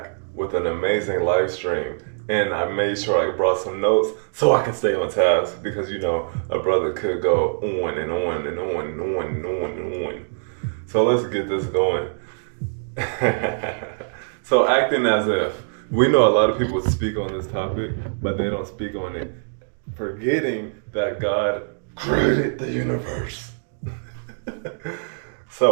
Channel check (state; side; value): silent; left; digital silence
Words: with an amazing live stream, and I made sure I brought some notes so I can stay on task because a brother could go on and on and on and on and on and on. So let's get this going. So acting as if we know a lot of people speak on this topic, but they don't speak on it, forgetting that God created the universe.